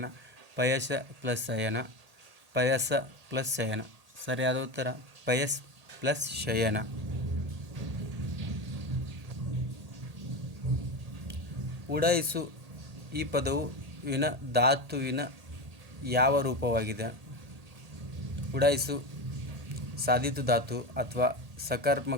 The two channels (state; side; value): late; left; 1.8 ms